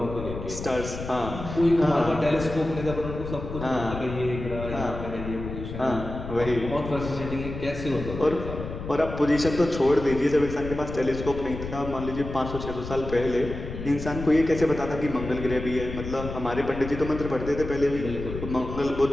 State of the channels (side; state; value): left; noise; rumble, 8 dB below the sound